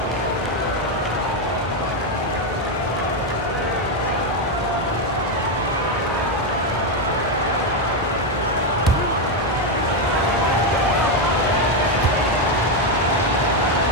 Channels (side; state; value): both; normal; correlation 0.06